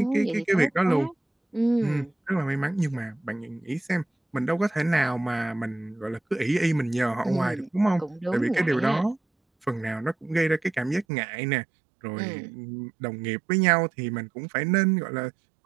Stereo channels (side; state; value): left; drops out; at 11.1 s